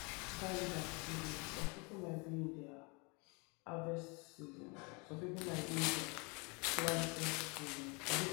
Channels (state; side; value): quieter; right; 30.9 dB